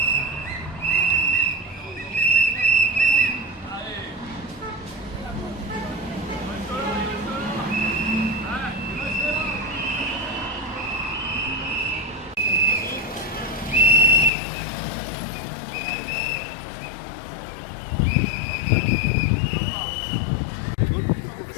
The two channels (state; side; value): drops out; right; at 14.3 s